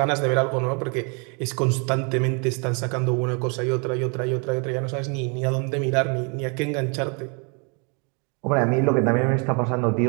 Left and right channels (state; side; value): quieter; left; 34.6 dB